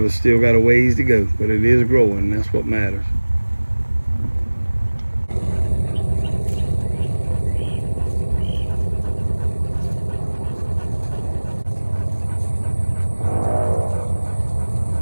it still got a ways to go, but it is growing. That's what matters.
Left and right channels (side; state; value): both; inverted; correlation -1.00